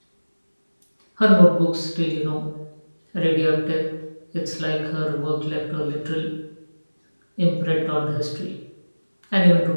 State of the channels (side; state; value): both; inverted; correlation -1.00